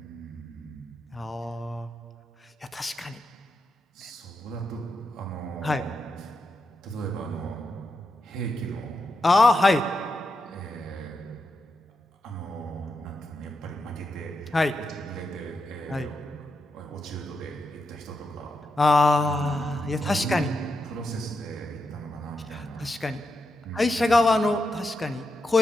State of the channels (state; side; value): normal; both; correlation 0.85